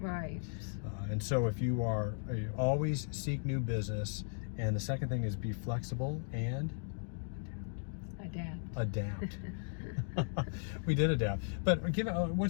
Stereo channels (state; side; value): silent; right; digital silence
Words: Right. And so if you always seek new business, and the second thing is be flexible and adapt. We did adapt. But